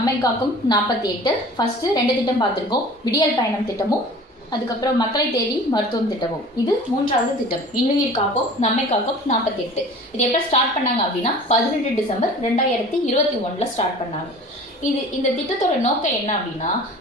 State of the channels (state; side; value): normal; both; correlation 0.43